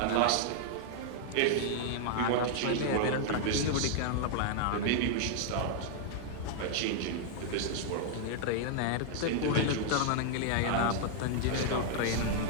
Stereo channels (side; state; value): both; different; correlation -0.01